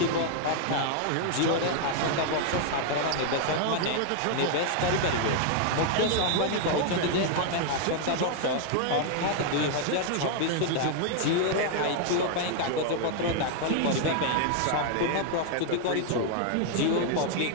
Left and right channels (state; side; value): different; both; correlation 0.00